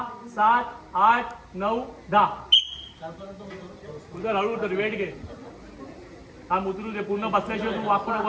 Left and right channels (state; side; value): identical; both; correlation 1.00